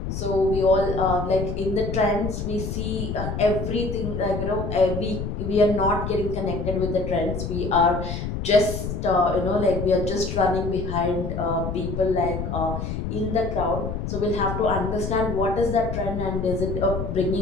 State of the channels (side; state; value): left; noise; rumble, 4 dB below the sound